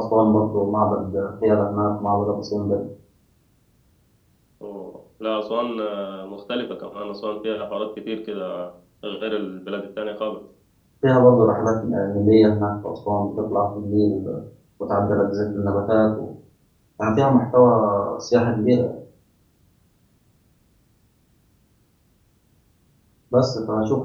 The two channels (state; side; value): identical; both; correlation 1.00